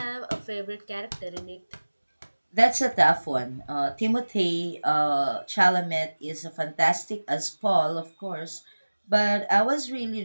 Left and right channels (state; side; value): inverted; both; correlation -1.00